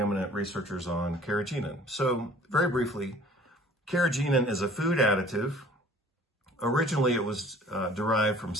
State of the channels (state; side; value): normal; both; correlation 0.51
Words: researchers on carrageenan. So very briefly, carrageenan is a food additive. Originally, it was derived from